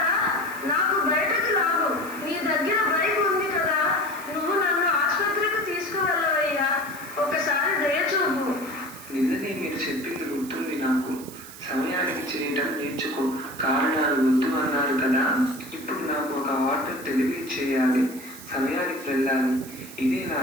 రా. నాకు బయటకు రాను. నీ దగ్గర బైక్ ఉంది కదా, నువ్వు నన్ను ఆసుపత్రికి తీసుకువెళ్ళవయ్యా. నిన్ననే మీరు చెప్పింది గుర్తుంది నాకు. సమయానికి చేయటం నేర్చుకో, కారణాలు వద్దు అన్నారు కదా. ఇప్పుడు నాకు ఒక ఆర్డర్ డెలివరీ చేయాలి, సమయానికి వెళ్ళాలి. ఇదే నా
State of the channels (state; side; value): noise; right; hiss, 16 dB below the sound